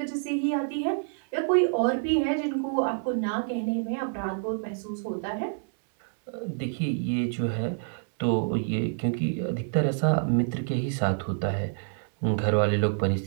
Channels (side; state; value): left; silent; digital silence